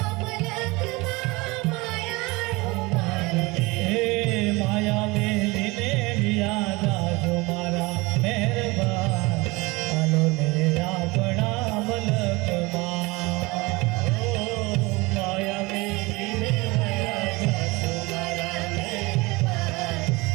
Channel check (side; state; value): left; quieter; 23.8 dB